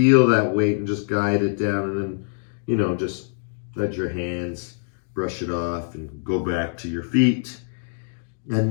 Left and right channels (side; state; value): right; silent; digital silence